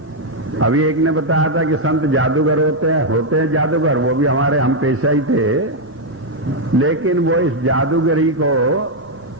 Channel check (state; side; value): normal; both; correlation 0.00